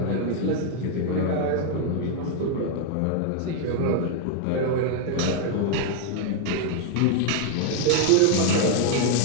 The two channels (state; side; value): different; both; correlation 0.00